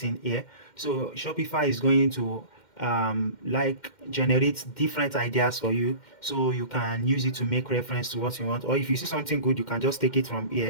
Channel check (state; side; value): late; right; 2.1 ms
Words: here. So Shopify is going to like generate different ideas for you, so you can use it to make reference to what you want, or if you see something good, you can just take it from